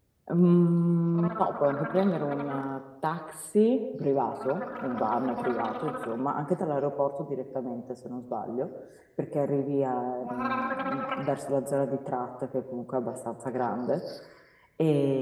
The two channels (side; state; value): both; identical; correlation 1.00